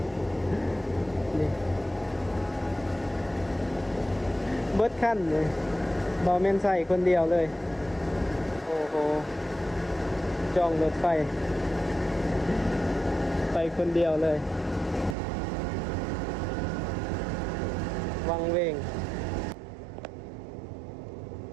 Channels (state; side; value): drops out; left; at 15.2 s